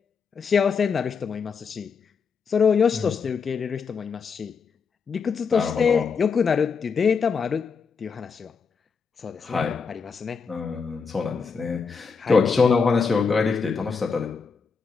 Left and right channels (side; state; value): right; quieter; 5.5 dB